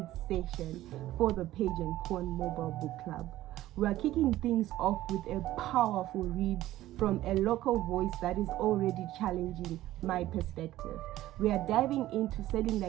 session for the Page Pawn Mobile Book Club. We are kicking things off with a powerful read from a local voice that is already challenging my perspective. We are diving into Selling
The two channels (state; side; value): quieter; left; 15.0 dB